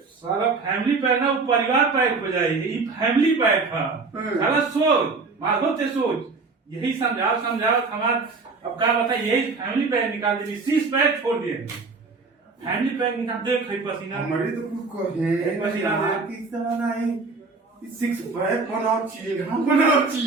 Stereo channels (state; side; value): quieter; left; 4.2 dB